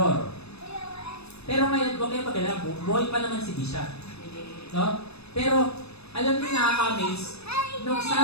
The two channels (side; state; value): right; late; 0.79 ms